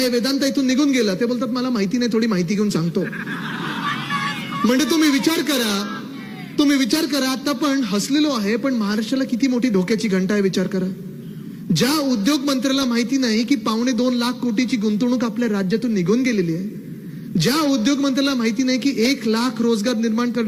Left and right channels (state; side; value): identical; both; correlation 1.00